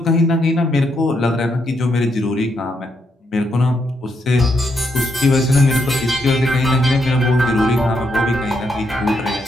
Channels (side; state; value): both; normal; correlation 0.78